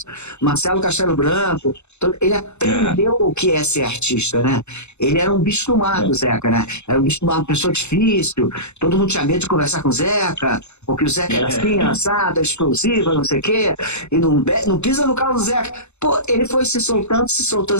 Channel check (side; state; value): right; late; 0.82 ms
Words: Marcelo Castelo Branco, ele aprendeu o que é ser artista, né? Ele era um bicho do mato, Zeca, né? Era um bicho do mato, uma pessoa difícil, todo mundo tinha medo de conversar com o Zeca, porque o Zeca era assim, assado, explosivo, não sei o quê, e não pisa no carro do Zeca. Pô, ele foi se soltando,